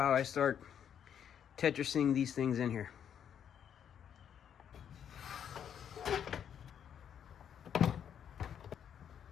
I start Tetrising these things in here.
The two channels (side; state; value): right; quieter; 8.7 dB